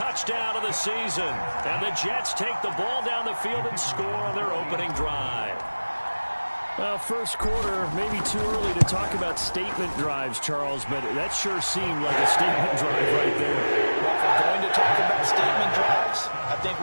of the season. And the Jets take the ball down the field and score on their opening drive. Well, first quarter, maybe too early to talk about statement drives, Charles, but that sure seemed like a statement drive right there. Well, if we're going to talk about statement drives, I think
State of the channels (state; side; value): inverted; both; correlation -1.00